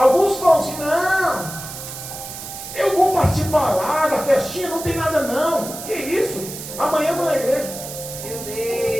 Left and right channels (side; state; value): right; noise; hiss, 10 dB below the sound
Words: falam assim, não, eu vou participar lá da festinha, não tem nada não. Que isso? Amanhã eu estou na igreja. Meu